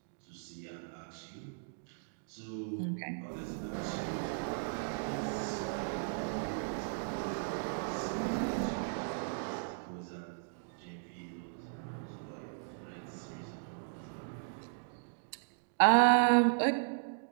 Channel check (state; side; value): silent; left; digital silence